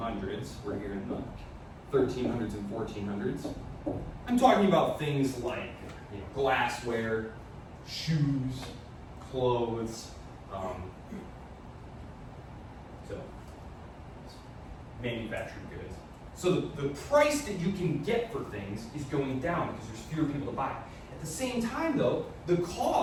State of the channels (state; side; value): identical; both; correlation 1.00